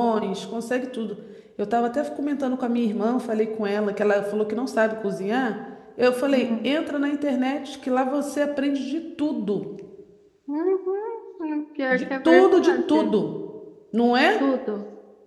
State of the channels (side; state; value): both; identical; correlation 1.00